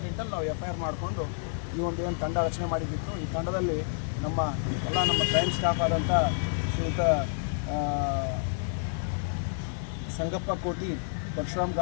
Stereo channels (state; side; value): silent; right; digital silence